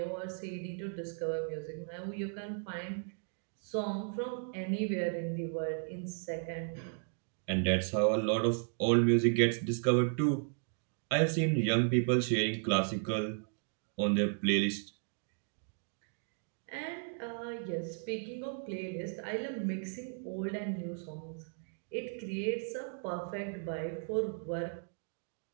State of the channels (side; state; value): left; silent; 54 dB below the other